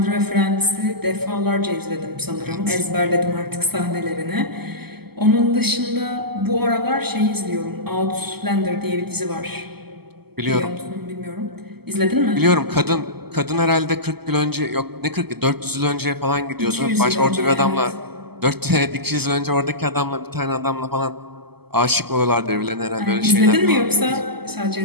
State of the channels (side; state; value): left; late; 0.96 ms